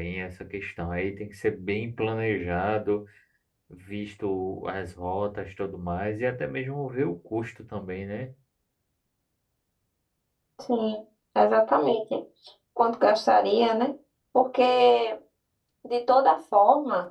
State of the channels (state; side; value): identical; both; correlation 1.00